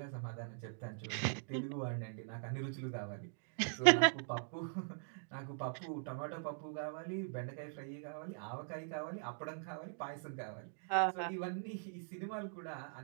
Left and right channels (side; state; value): left; silent; digital silence